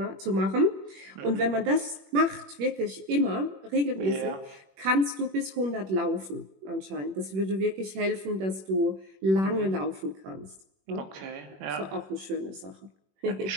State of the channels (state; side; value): late; left; 21 ms